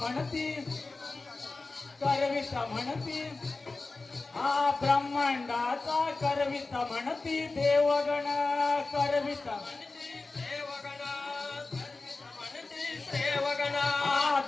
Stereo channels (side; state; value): right; quieter; 3.5 dB